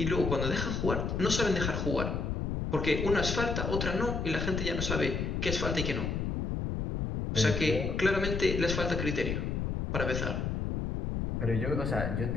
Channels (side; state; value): left; noise; rumble, 1 dB below the sound